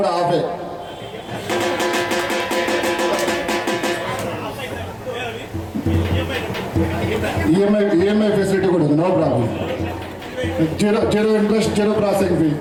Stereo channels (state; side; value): identical; both; correlation 1.00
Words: హాఫే. ఈఎంఐ ఫెసిలిటీ కూడా ఉంది, no problem. Zero interest, zero processing fee.